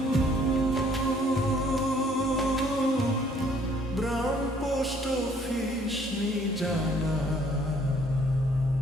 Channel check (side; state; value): both; normal; correlation 0.62